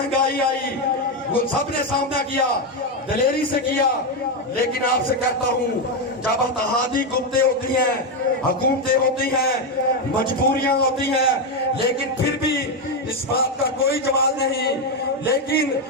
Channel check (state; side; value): normal; both; correlation 0.07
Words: آئی، وہ سب نے سامنا کیا، دلیری سے کیا، لیکن آپ سے کہتا ہوں جب اتحادی قوتیں ہوتی ہیں، حکومتیں ہوتی ہیں، مجبوریاں ہوتی ہیں، لیکن پھر بھی اس بات کا کوئی جواز نہیں۔ لیکن